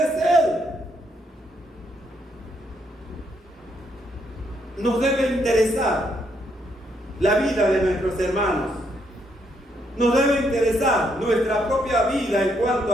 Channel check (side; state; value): both; normal; correlation 0.74